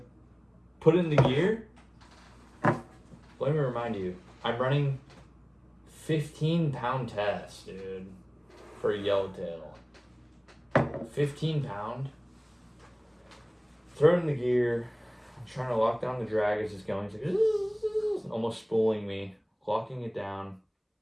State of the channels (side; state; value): both; identical; correlation 1.00